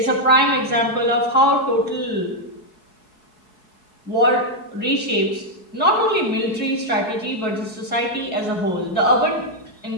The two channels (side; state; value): right; late; 4.7 ms